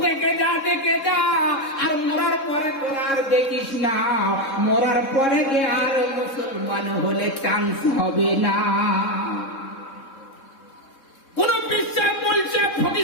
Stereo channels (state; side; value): late; right; 3.7 ms